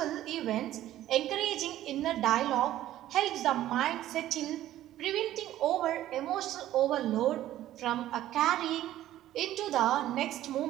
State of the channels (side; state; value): left; quieter; 13.5 dB